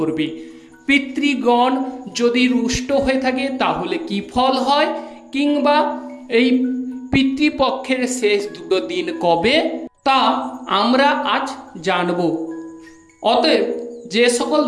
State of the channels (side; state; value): both; identical; correlation 1.00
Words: পিতৃগণ যদি রুষ্ট হয়ে থাকে তাহলে কি ফল হয়, কিংবা এই পিতৃপক্ষের শেষ দুটো দিন কবে, তা আমরা আজ জানব। অতএব যে সকল